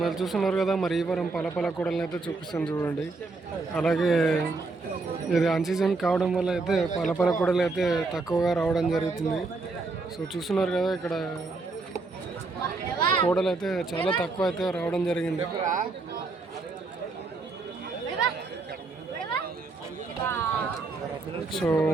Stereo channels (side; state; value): left; quieter; 3.8 dB